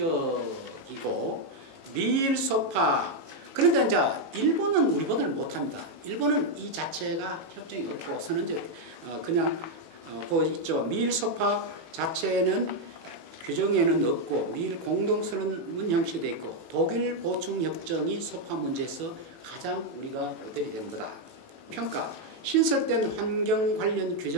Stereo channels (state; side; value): late; left; 18 ms